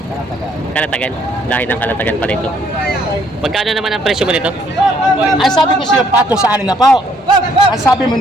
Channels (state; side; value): normal; both; correlation 0.66